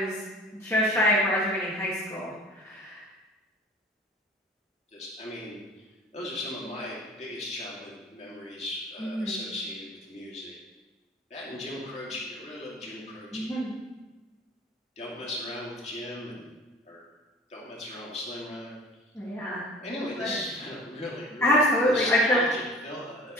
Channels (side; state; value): both; normal; correlation 0.44